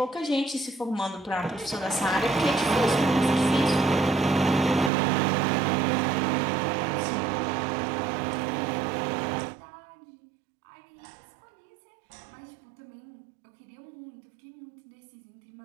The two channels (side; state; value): left; drops out; at 4.9 s